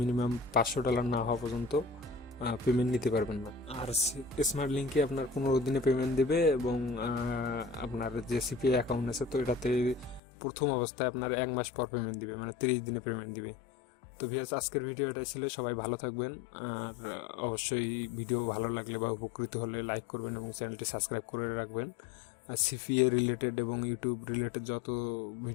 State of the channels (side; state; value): right; drops out; at 10.2 s